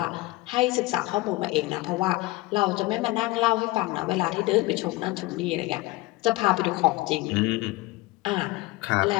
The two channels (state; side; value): quieter; right; 20.4 dB